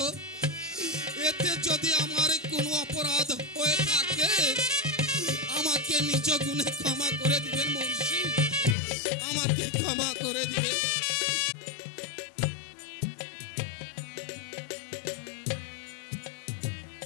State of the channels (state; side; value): drops out; right; at 8.8 s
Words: এতে যদি আমার কোনো অপরাধ হয়ে থাকে আমাকে নিজ গুণে ক্ষমা করে দিবেন মুর্শিদ, আমাকে ক্ষমা করে দিবেন।